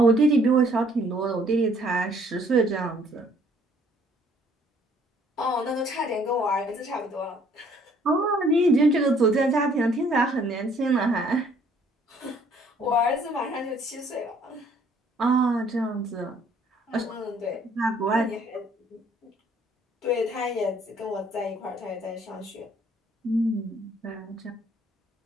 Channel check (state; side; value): normal; both; correlation 0.62